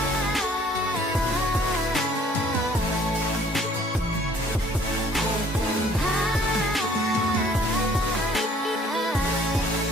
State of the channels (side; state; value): both; normal; correlation 0.57